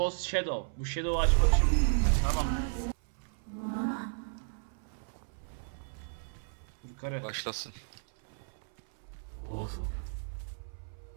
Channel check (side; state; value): left; silent; 55 dB below the other